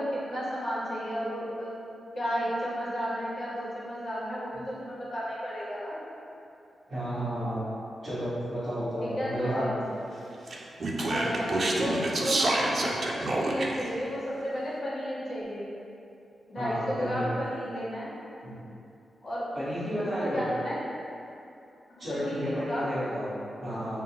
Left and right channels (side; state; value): both; normal; correlation 0.88